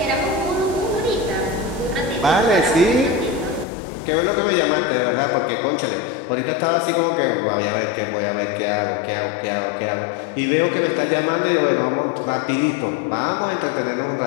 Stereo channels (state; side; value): drops out; right; at 3.7 s